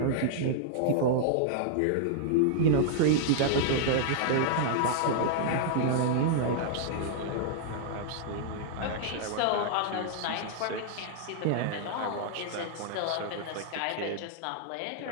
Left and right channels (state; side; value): different; both; correlation -0.01